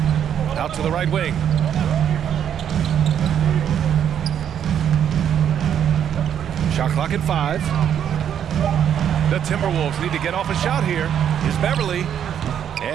Out to the right wing. Shot clock at 5. The Timberwolves need to get off a shot here. Here's Beverly.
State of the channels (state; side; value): quieter; left; 9.1 dB